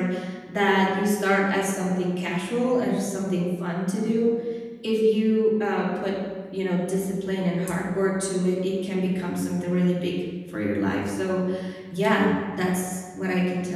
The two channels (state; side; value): identical; both; correlation 1.00